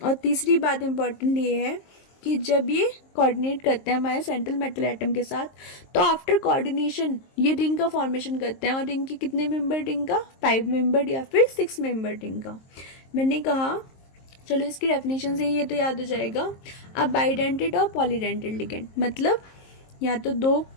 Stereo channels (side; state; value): right; late; 23 ms